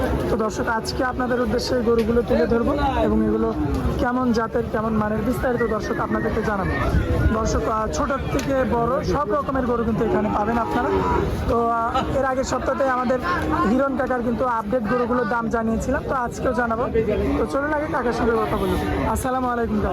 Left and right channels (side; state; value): both; identical; correlation 1.00